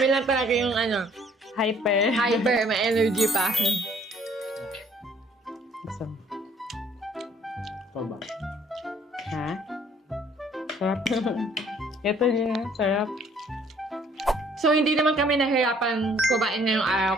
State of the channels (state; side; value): normal; both; correlation 0.61